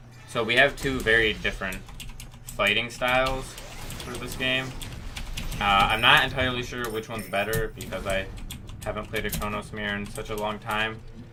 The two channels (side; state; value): both; identical; correlation 1.00